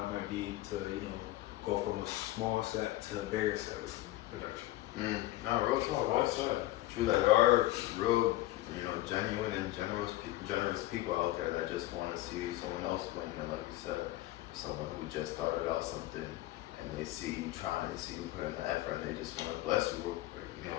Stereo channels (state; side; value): quieter; right; 16.7 dB